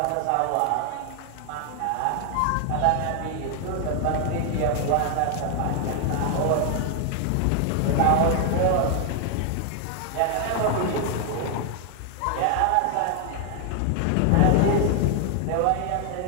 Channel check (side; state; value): both; different; correlation 0.00